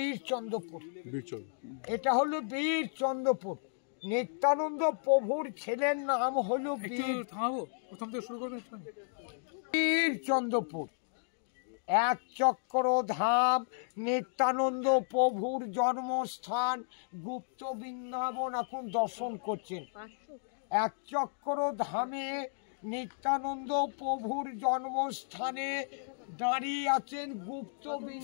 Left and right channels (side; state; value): right; silent; digital silence